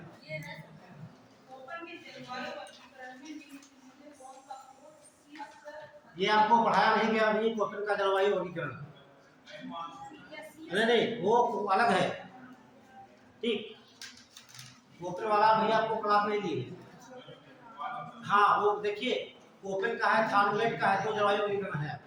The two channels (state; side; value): identical; both; correlation 1.00